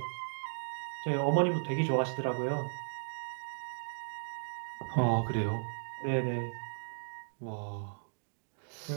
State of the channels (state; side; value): silent; left; digital silence